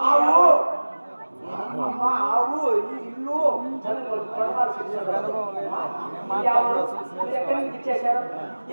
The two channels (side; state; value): both; inverted; correlation -1.00